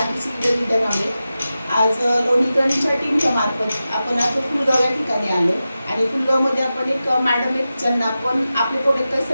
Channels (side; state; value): both; inverted; correlation -0.93